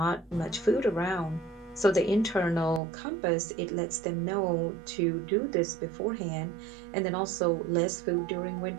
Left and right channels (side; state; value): left; drops out; at 2.8 s